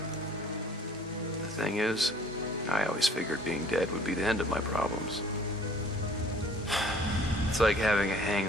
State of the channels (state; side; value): normal; both; correlation 0.54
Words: The thing is, I always figured being dead would be the end of my problems. It's like having a